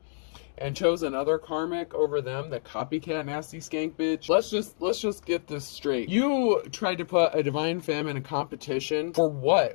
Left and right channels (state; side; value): silent; right; digital silence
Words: and chose another karmic over them, the copycat nasty skank bitch. Let's just get this straight. You tried to put a divine femme in a competition for